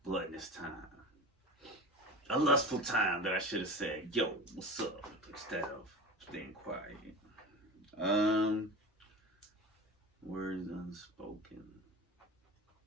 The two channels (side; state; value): both; normal; correlation 0.31